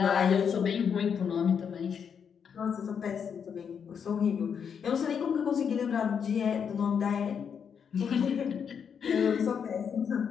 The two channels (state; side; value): quieter; right; 7.2 dB